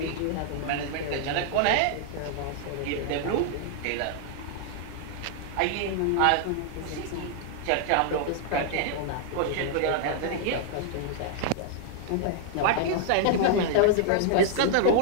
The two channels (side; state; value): both; different; correlation -0.01